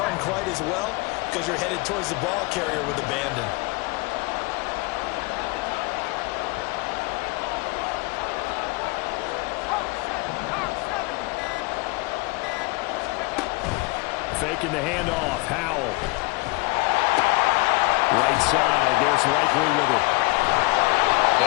quite as well because you're headed towards the ball carrier with abandon. Faking the handoff. Howell. Right side. There's Likely with it.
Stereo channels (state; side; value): quieter; right; 24.6 dB